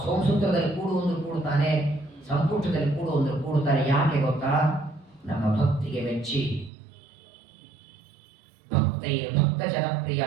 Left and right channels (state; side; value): drops out; left; at 6.7 s